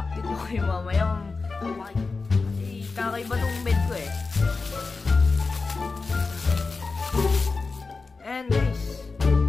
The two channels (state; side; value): quieter; right; 4.1 dB